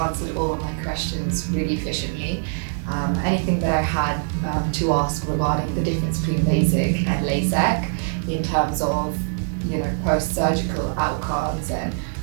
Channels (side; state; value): left; silent; digital silence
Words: all of my questions really efficiently. Anything that I had to ask regarding the difference between LASIK and LASIK in terms of post-surgical outcomes and